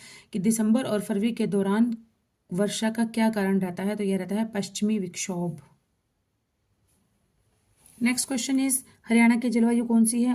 कि दिसंबर और फरवरी के दौरान वर्षा का क्या कारण रहता है? तो यह रहता है पश्चिमी विक्षोभ। नेक्स्ट क्वेश्चन इज हरियाणा की जलवायु कौन सी है?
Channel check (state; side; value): identical; both; correlation 1.00